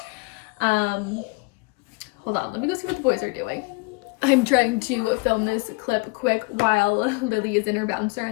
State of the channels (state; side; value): quieter; right; 27.4 dB